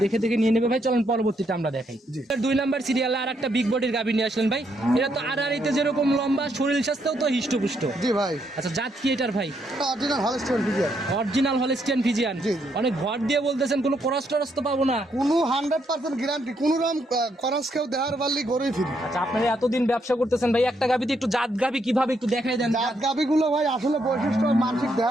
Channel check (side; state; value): both; normal; correlation 0.76